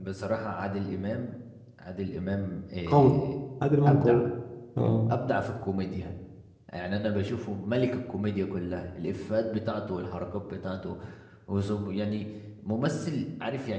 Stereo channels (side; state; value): both; identical; correlation 1.00